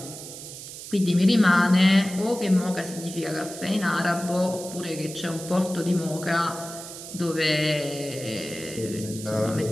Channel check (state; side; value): noise; right; hiss, 12 dB below the sound